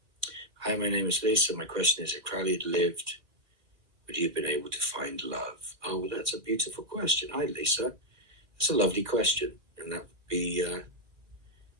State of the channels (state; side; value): late; left; 2.1 ms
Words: Hi, my name is Lisa. My question is, if Crowley had lived, would you have been able to find love? Oh, well, that's a beautiful question. Hi, Lisa. That's a lovely question, and that would be